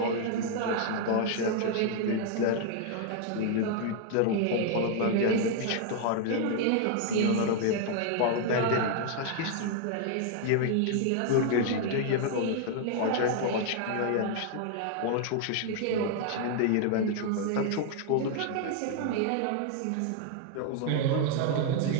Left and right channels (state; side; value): different; both; correlation 0.00